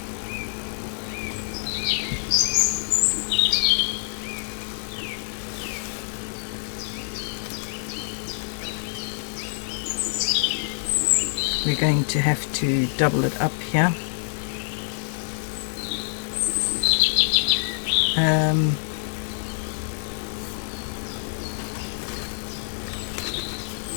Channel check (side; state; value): right; silent; digital silence